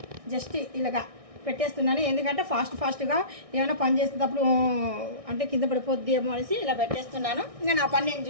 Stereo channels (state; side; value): late; left; 1.6 ms